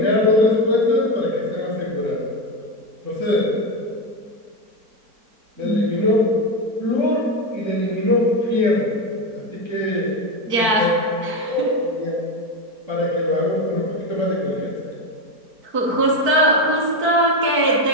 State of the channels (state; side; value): late; left; 4.6 ms